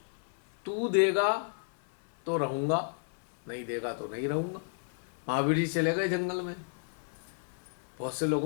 तू देगा तो रहूंगा, नहीं देगा तो नहीं रहूंगा। महावीर जी चले गए जंगल में, बहुत से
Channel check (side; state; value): right; silent; 56 dB below the other